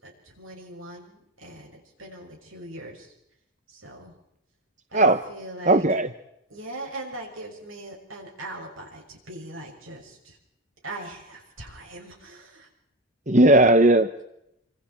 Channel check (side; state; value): both; normal; correlation 0.19